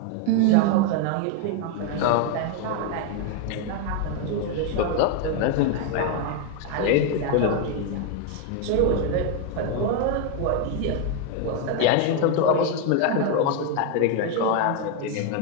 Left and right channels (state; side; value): different; both; correlation 0.01